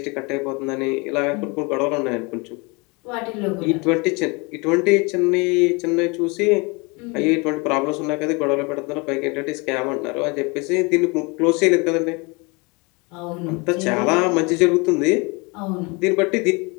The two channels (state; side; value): quieter; right; 28.4 dB